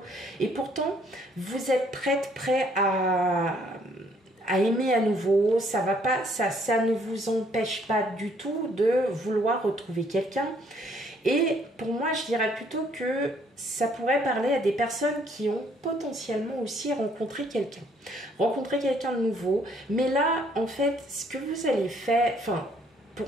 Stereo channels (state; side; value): normal; both; correlation 0.65